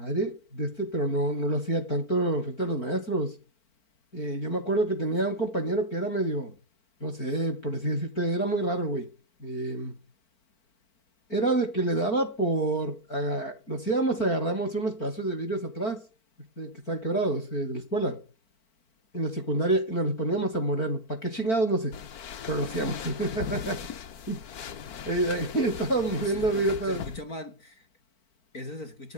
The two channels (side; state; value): right; late; 4.5 ms